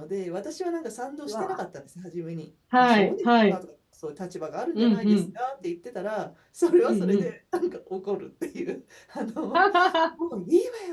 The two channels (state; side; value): identical; both; correlation 1.00